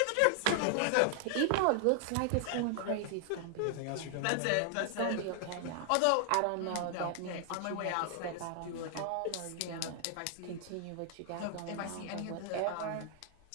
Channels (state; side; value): different; both; correlation 0.00